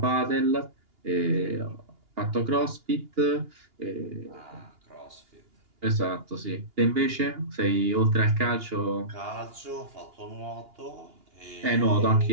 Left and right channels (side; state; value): left; late; 2.8 ms